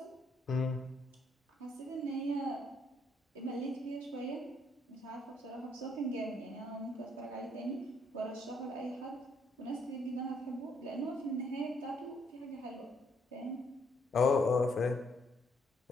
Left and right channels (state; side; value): normal; both; correlation 0.70